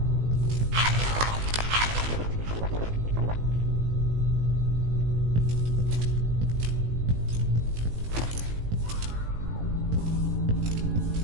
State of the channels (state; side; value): late; left; 18 ms